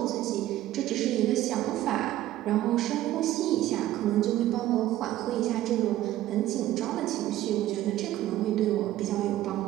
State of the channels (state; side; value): quieter; left; 14.3 dB